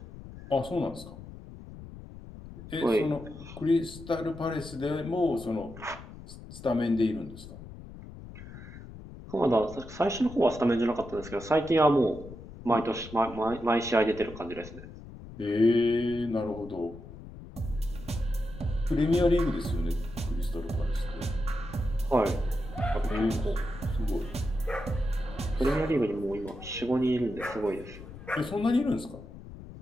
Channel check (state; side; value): noise; left; rumble, 14 dB below the sound